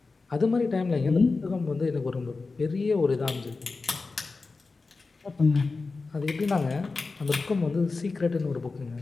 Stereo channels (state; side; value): quieter; right; 4.0 dB